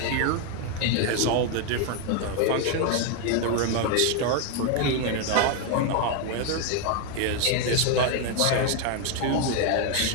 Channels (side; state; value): both; different; correlation 0.01